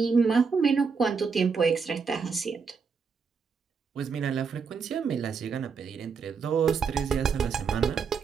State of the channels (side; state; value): left; quieter; 5.6 dB